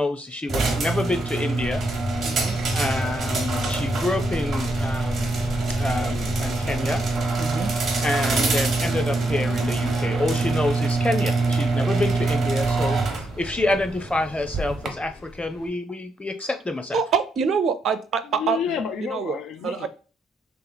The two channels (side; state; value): both; normal; correlation 0.79